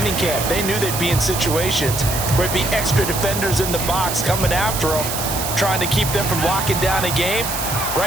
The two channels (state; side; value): noise; right; hiss, 4 dB below the sound